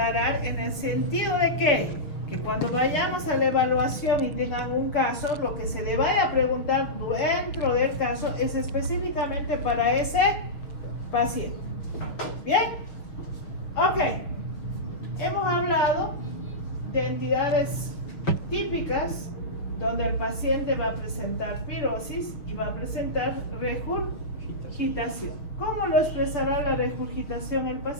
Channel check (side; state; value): right; late; 6.5 ms